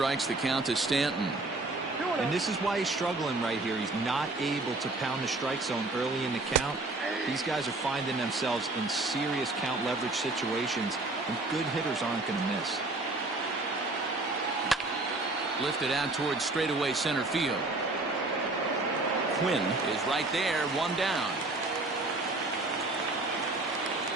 The count to Stanton. And this is why he's struggling right here. He's not able to pound the strike zone early in the count. These guys are finding themselves in serious count leverage situations, and good hitters aren't going to miss. Lifted out towards straightaway center field. Quinn is right there, 1 down.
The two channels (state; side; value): quieter; left; 3.1 dB